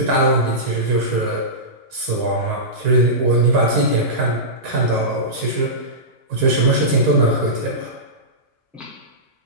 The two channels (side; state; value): both; normal; correlation -0.18